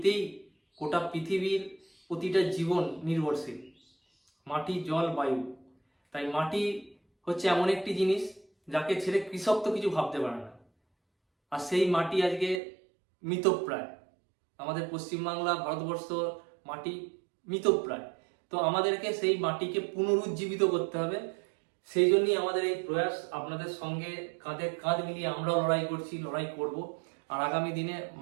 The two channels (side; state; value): left; drops out; at 12.6 s